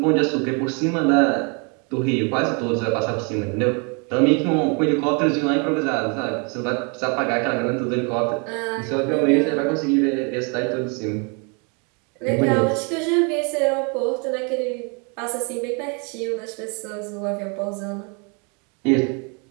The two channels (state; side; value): quieter; left; 34.7 dB